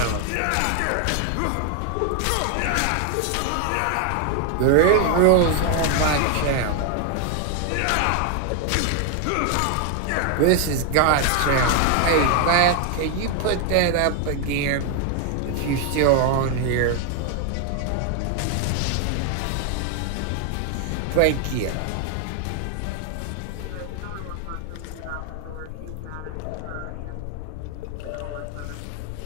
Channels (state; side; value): different; both; correlation 0.00